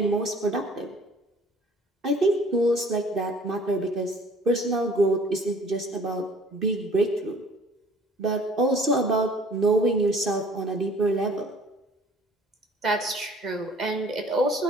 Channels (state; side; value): normal; both; correlation 0.52